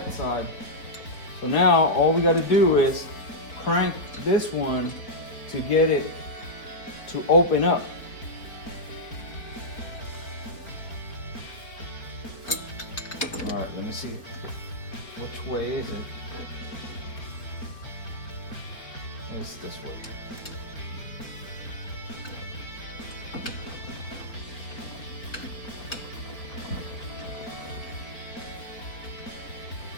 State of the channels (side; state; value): right; late; 4.4 ms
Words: side. So now all we got to do is crank this one to get it to open up. All right, let me see. Which way is it? It's this way.